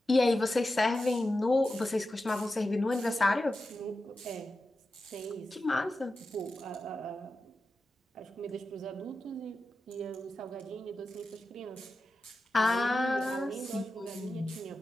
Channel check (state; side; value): normal; both; correlation 0.92